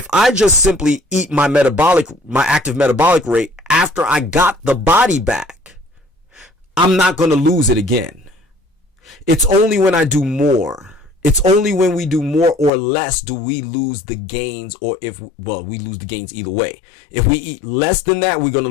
I just simply eat my active metabolic rate after I got the body back, I'm not going to lose it again. It's only when I do more. It's only when we do more or less do we lose the gains, or we lose the gains either way. If we eat less than that, we're going to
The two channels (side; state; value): right; drops out; at 12.7 s